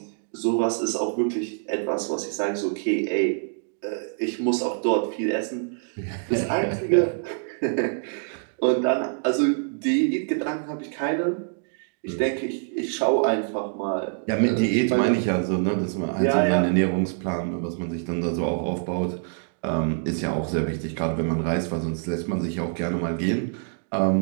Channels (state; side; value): silent; left; digital silence